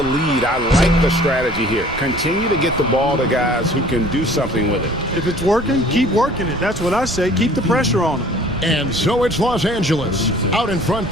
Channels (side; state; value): right; noise; rumble, 13 dB below the sound